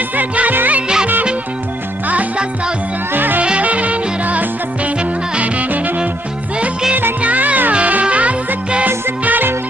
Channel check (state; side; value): normal; both; correlation 0.72